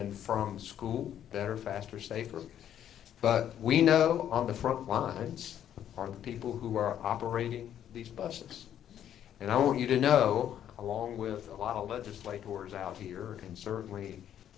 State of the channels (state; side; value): quieter; right; 10.3 dB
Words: from school better, faster, safer. But we know on the front lines are the people who are operating these buses. And I want you to know, along with a lot of legislators out here, and certainly